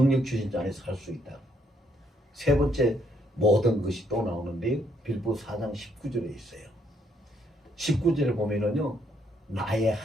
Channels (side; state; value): both; normal; correlation 0.71